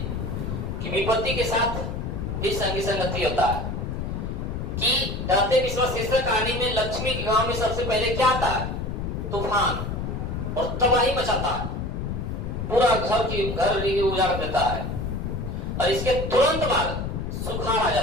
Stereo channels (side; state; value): left; noise; rumble, 4 dB below the sound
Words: कि विपत्ति के साथ भी संगी संगति होता है कि दाते विश्वास शीर्षक कहानी में लक्ष्मी के गांव में सबसे पहले क्या आता है? तूफान, और तबाही मचाता है, पूरा घर उजाड़ देता है। और इसके तुरंत बाद सुखाड़ आ